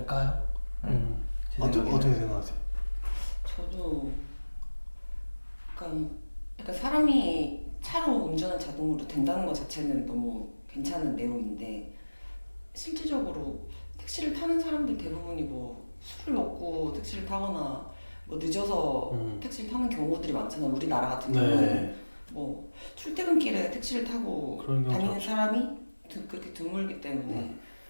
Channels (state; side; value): inverted; both; correlation -1.00